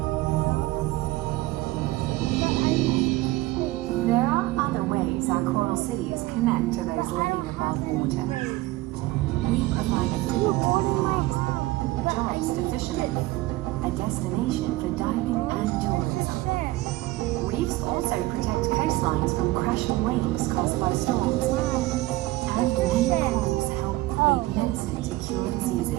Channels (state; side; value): quieter; left; 18.6 dB